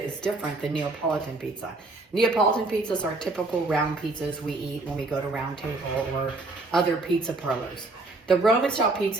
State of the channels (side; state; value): left; quieter; 3.1 dB